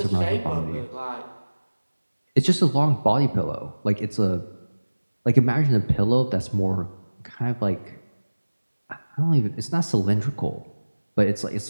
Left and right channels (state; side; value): inverted; both; correlation -1.00